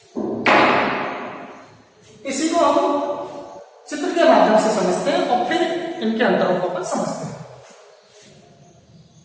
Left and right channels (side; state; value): both; identical; correlation 1.00